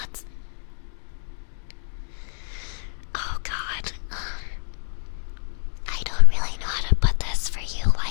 Oh God, I don't really know how to put this for you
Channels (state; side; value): silent; right; digital silence